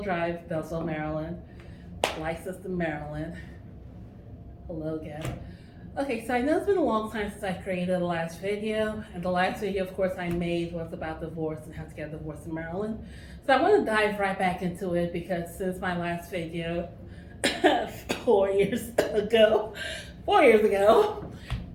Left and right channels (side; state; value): both; identical; correlation 1.00